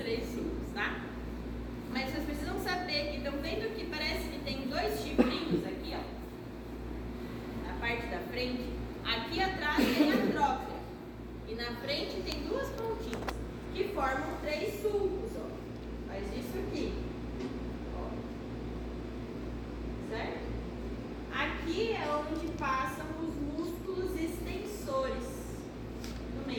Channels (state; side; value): identical; both; correlation 1.00